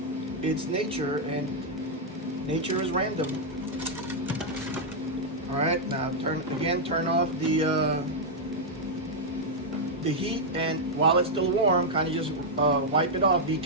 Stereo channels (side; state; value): both; normal; correlation -0.04